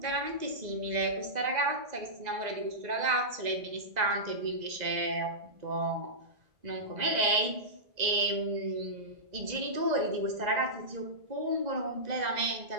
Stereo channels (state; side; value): late; left; 2.0 ms